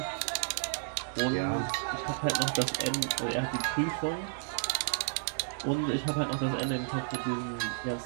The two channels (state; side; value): silent; left; digital silence